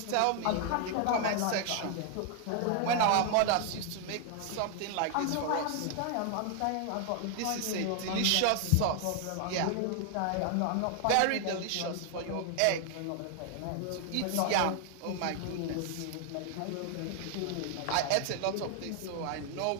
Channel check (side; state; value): both; different; correlation 0.00